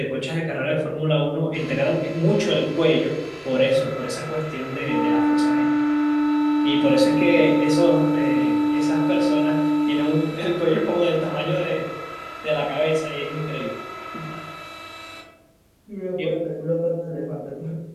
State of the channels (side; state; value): both; identical; correlation 1.00